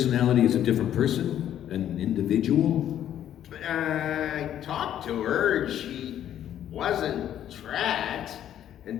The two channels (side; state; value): right; quieter; 10.9 dB